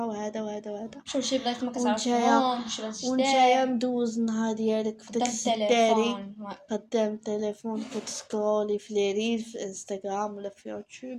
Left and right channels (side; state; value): both; identical; correlation 1.00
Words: وهذا وهذا وهذا، شوف شي بلايص ما كتعرفهمش، ونتايا مدوز النهار ديالك في داك السداري قدام التليفون، كتسكرولي في لي ريل في انستغرام ولا في